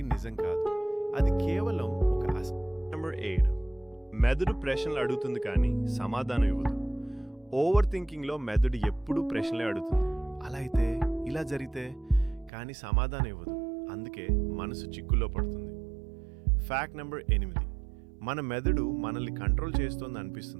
నిజం కాదు, అది కేవలం ఒక నెంబర్ 8, మెదడు ప్రశ్నలు అడుగుతుంది కానీ సమాధానం ఇవ్వదు. ఓవర్ థింకింగ్లో మెదడు ఎప్పుడూ ప్రశ్నలే అడుగుతుంది. అలా అయితే, ఇలా జరిగితే, కానీ సమాధానం ఇవ్వదు. అందుకే మనసు చిక్కుల్లో పడుతుంది. ఫ్యాక్ట్ నెంబర్ 8, మన మెదడు మనల్ని కంట్రోల్ చేస్తోంది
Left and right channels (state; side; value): drops out; left; at 12.5 s